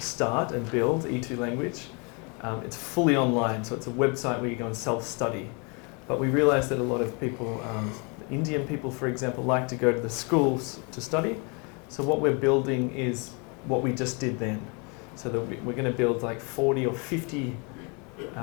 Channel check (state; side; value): quieter; right; 32.8 dB